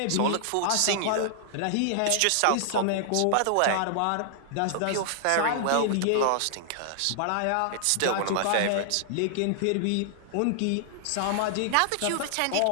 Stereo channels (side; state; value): both; different; correlation -0.01